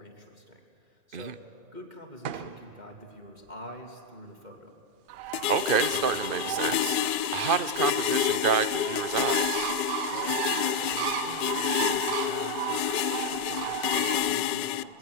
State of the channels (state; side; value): late; left; 2.4 ms